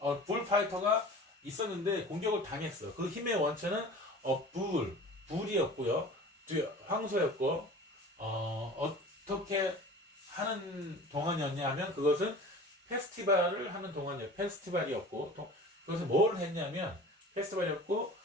bullfighter가 있었는데 공격을 당했어. 그 힘의 원천은 불이었고요. 황소였고 어떻게 하는 동안이었냐 하면 그것은 페스티벌을 하는 동안이었고 페스티벌이었고 그것은 뭘 했냐면 페스티벌이었고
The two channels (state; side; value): normal; both; correlation 0.40